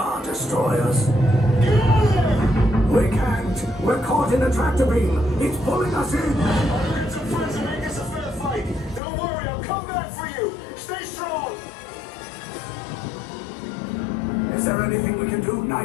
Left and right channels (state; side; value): drops out; right; at 9.0 s